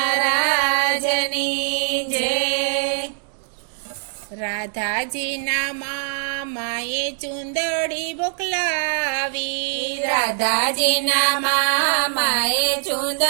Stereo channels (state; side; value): silent; left; digital silence